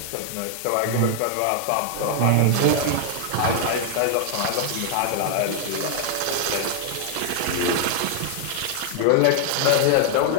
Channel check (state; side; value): different; both; correlation 0.00